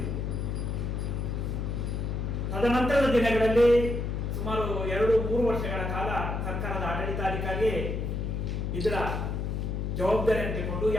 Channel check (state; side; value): noise; left; hum, 2 dB below the sound